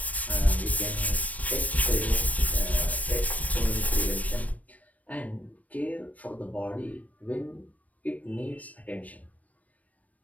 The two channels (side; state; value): right; late; 0.070 ms